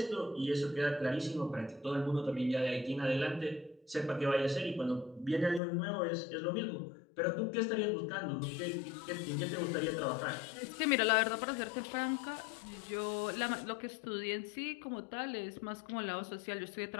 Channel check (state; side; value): drops out; right; at 5.6 s